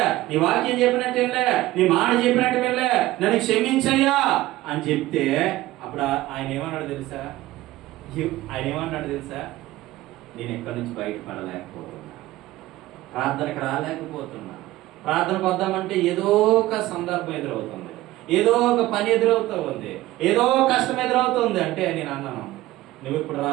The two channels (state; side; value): quieter; left; 16.8 dB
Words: నీ వాక్యం చెప్పినట్టు వెళ్ళే, నీ మాట చెప్పినట్టు వెళ్ళే, నన్ను క్షమించయ్యా అని చెప్తే అప్పుడు ఆయన ఏమన్నాడు తెలుసా? నేను ఎక్కడి నుంచి బయటపడలేకపోతున్నా, ప్రార్థనకు రాలేకపోతున్నా. ప్రార్థనకు వద్దామంటే ఏదో ఒక సందర్భం ఎదురవుతుంది, ఏదో ఒక పని ఎదురవుతూ ఉంది, ఏదో కష్టం ఎదురవుతుంది. అంటే నేను అన్నాను, నువ్వు ఇప్పుడు